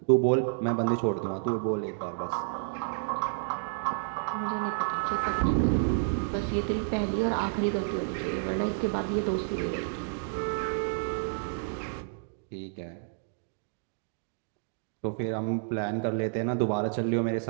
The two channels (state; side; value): silent; left; digital silence